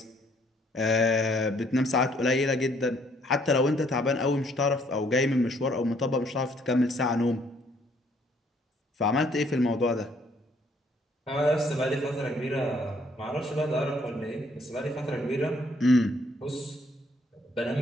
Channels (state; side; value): normal; both; correlation 0.65